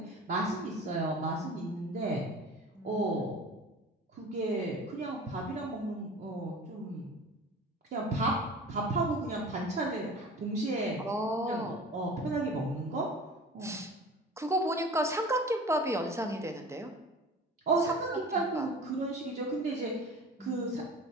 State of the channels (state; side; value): normal; both; correlation 0.39